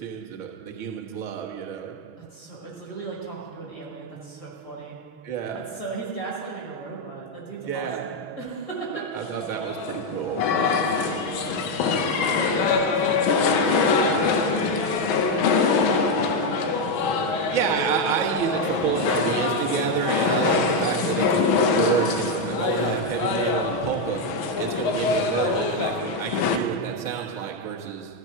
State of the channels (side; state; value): right; late; 6.2 ms